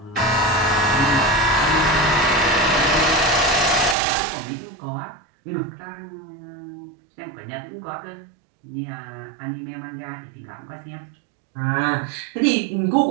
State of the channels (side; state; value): left; drops out; at 4.0 s